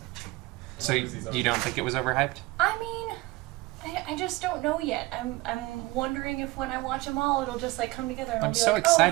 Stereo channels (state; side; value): quieter; left; 21.0 dB